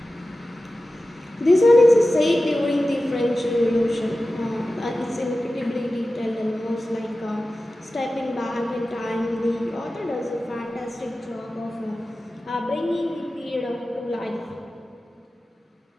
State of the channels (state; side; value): normal; both; correlation 0.95